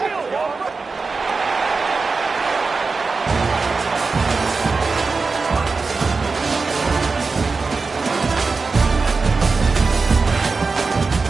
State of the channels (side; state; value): left; quieter; 4.3 dB